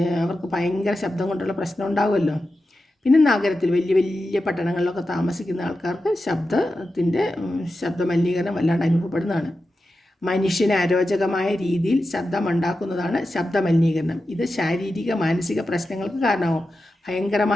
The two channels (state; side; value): normal; both; correlation 0.91